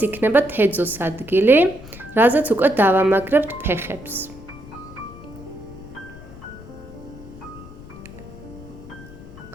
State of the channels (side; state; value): left; noise; rumble, 17 dB below the sound